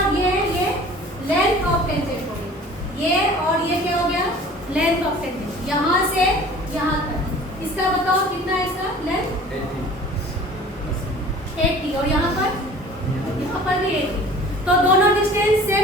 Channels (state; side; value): normal; both; correlation 0.46